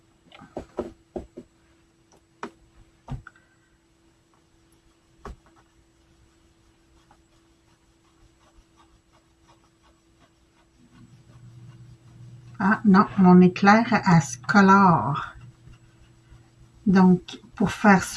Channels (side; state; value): both; identical; correlation 1.00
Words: Ah non, mon éclair, elle se colore. Donc, pour faire